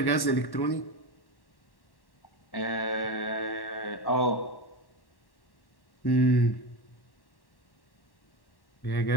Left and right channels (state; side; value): late; right; 1.1 ms